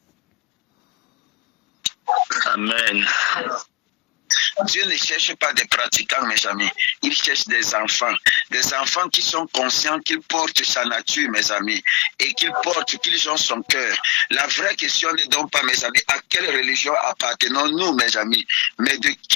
Amen. Dieu ne cherche pas des pratiquants, mes amis. Il cherche des enfants. des enfants qui sont conscients qu'ils portent sa nature, mes amis, et qu'ils ont son cœur. La vraie question n'est donc pas, mes amis, à quelle religion appartenons-nous, mes amis, mais de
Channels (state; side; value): quieter; right; 24.7 dB